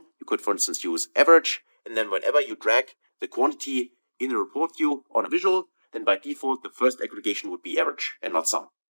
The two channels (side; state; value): both; inverted; correlation -1.00